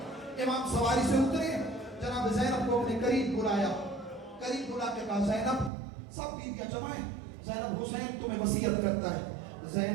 امام سواری سے اترے، جناب زینب کو اپنے قریب بلایا، قریب بلا کے کہا زینب، سب بیویاں جمائیں، زینب حسین تمہیں وصیت کرتا ہے،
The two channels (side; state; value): left; drops out; at 5.7 s